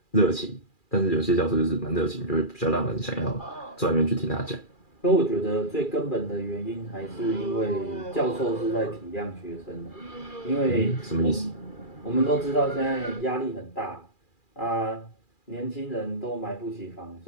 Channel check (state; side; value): late; right; 2.4 ms